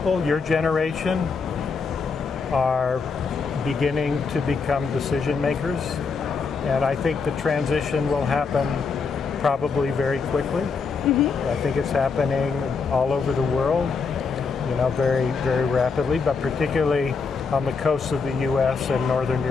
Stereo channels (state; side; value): quieter; right; 5.1 dB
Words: your generation, are beginning to become decision makers. And I think the transition will happen probably very quickly. I think it's happening all over the world, very, very rapidly, but particularly on the coasts of the U.S. and Northern